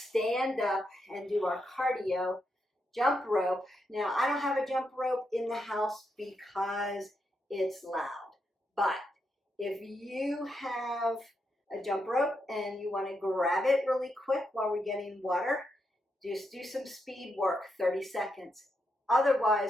up and do our cardio jump rope. Now, I don't have a jump rope in the house because it's loud. But if you have a jump rope and you want to grab it really quick while we're getting water, just do some speed work, 30 seconds.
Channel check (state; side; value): normal; both; correlation 0.82